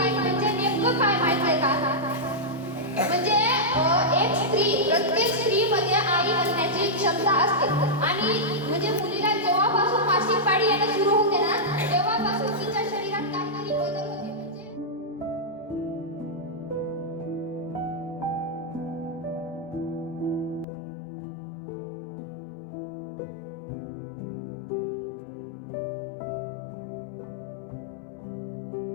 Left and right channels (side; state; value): right; drops out; at 20.7 s